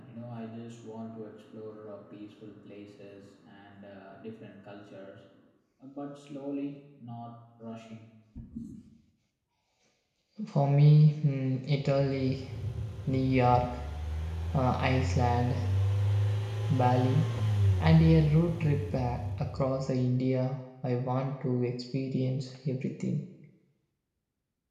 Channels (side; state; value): both; identical; correlation 1.00